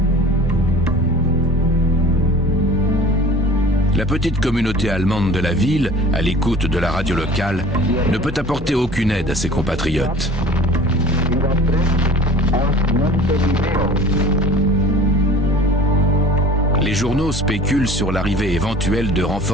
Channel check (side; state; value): both; normal; correlation 0.43